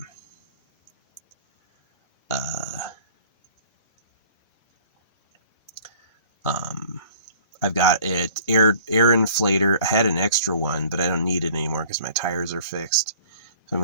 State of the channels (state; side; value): inverted; both; correlation -0.50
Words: um, I've got it air inflator. I had an extra one, but I don't need it anymore because my tires are fixed. So I'm